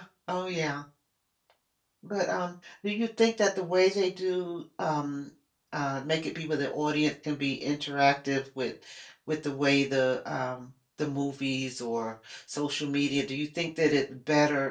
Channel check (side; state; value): both; identical; correlation 1.00